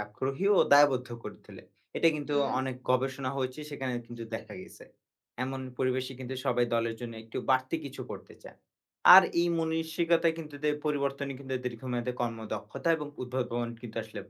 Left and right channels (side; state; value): both; identical; correlation 1.00